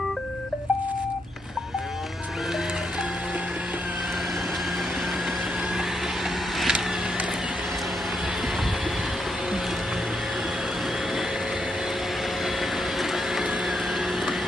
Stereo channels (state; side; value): normal; both; correlation 0.80